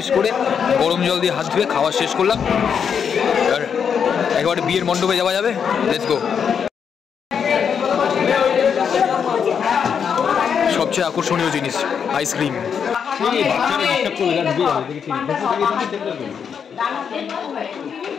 করে গরম জল দিয়ে হাত ধুয়ে খাওয়া শেষ করলাম। আর একেবারে বিয়ের মণ্ডপে যাওয়া যাবে, লেটস গো। সবচেয়ে আকর্ষণীয় জিনিস আইসক্রিম।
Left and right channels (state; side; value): quieter; right; 7.1 dB